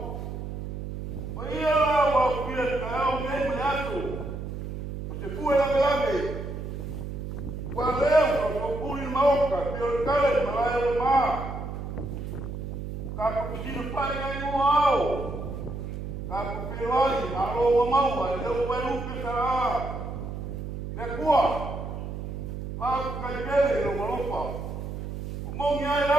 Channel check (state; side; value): noise; right; hum, 6 dB below the sound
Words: O ia la wa kuia ka o me me atu. O te kuwa la grave. Wa leo ko puri maoka, pio kale malaya ma. Ka ko pisino pai ai no ao. Ka ko peloi aro wa mau ai leo wa lupe sa. Ne kuwa. Pa ka kele no malopa. Mongi ai